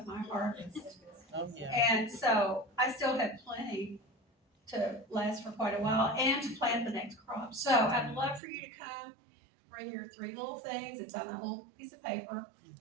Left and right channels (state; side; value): drops out; left; at 8.4 s